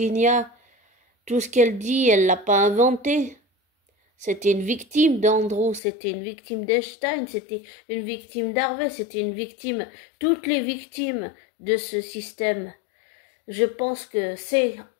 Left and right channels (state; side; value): drops out; right; at 5.8 s